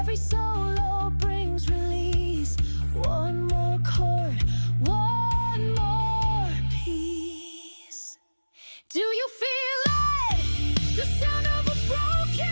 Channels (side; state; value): both; inverted; correlation -1.00